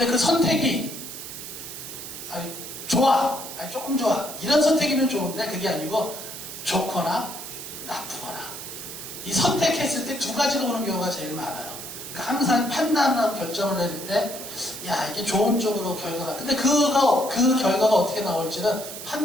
그 선택이, 좋아. 조금 좋아. 이런 선택이면 좋은데 그게 아니고 좋거나 나쁘거나. 이 선택했을 때 두 가지가 오는 경우가 제일 많아요. 그러니까 항상 판단하고 결정을 내릴 때, 야, 이게 좋은 쪽으로 결과가. 근데 그 결과가 어떻게 나올지는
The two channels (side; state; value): right; noise; hiss, 10 dB below the sound